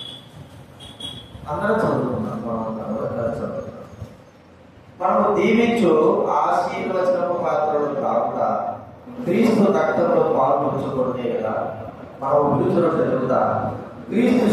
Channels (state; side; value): identical; both; correlation 1.00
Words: అందరూ చదువుకున్నాం. మనము దీవించు ఆశీర్వచనము పాత్రలు కాకుండా క్రీస్తు రక్తంలో పాల్పంచుకునే కదా. మనం విడుదల జరుగుతా క్రీస్తు